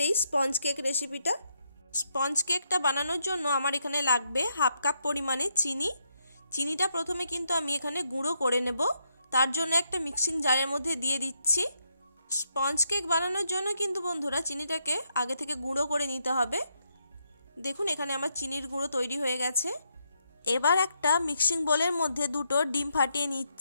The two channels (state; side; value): inverted; both; correlation -0.79